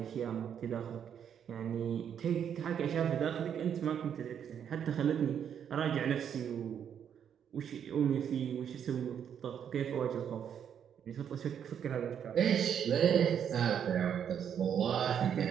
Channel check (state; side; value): quieter; left; 8.5 dB